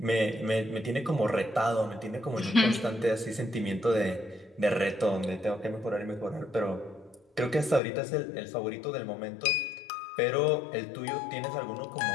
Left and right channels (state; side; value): drops out; right; at 7.8 s